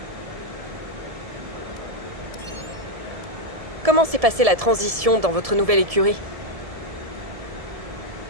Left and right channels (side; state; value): left; late; 1.7 ms